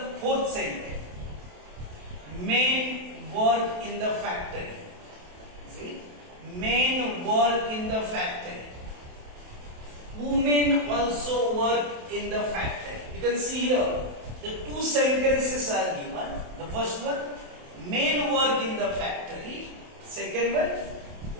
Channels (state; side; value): late; left; 27 ms